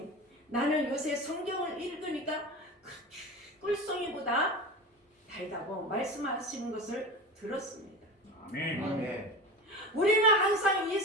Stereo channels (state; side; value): normal; both; correlation 0.29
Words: 나는 요새 성경을 읽으니까 그렇게 꿀송이보다 달다고 말씀하시는 것을 들었습니다. 아멘. 아멘. 우리는 항상 이